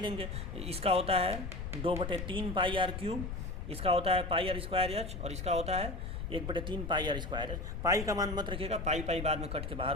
इसका होता है 2/3 πr³, इसका होता है πr²h, और इसका होता है 1/3 πr²h। पाई का मान मत रखिएगा, पाई बाद में कट के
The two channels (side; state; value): left; noise; rumble, 5 dB below the sound